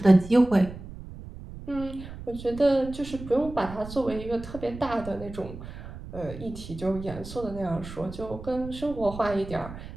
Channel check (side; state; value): right; noise; rumble, 12 dB below the sound